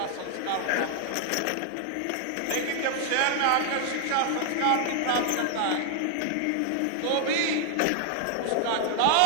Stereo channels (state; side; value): different; both; correlation 0.00